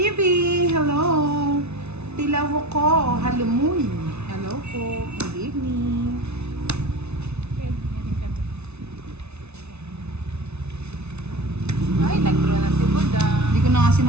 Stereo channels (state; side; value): late; left; 0.81 ms